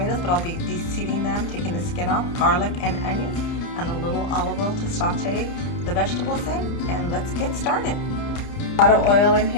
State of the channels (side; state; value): right; late; 30 ms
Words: but I'll be de-seeding them, taking the skin off, garlic and onions, and a little olive oil to saute the vegetables in, and let's get started. A lot of oil in